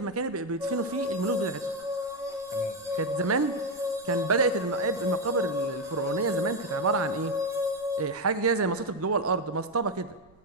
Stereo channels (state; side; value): noise; right; rumble, 30 dB below the sound